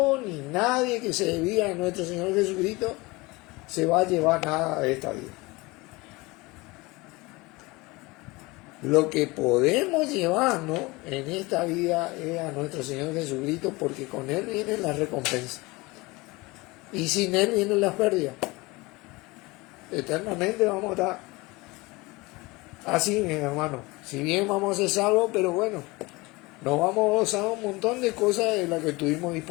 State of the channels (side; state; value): right; quieter; 23.2 dB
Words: ni nadie que se debía a nuestro Señor Jesucristo se va a llevar nada de esta vida. Lo que podemos llevarnos en esta vida es a nuestro Señor Jesucristo, porque con Él viene la recompensa. Y sin Él vienen las pérdidas. Eternamente vamos a estar así, mi hermano. Si bien vamos a ser salvos, pero bueno, nos vamos a gozar un montón de cosas de las que tuvimos